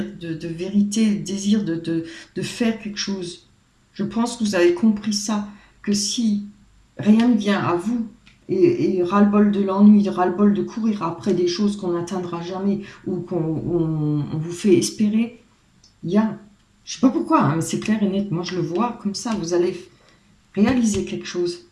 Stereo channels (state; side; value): identical; both; correlation 1.00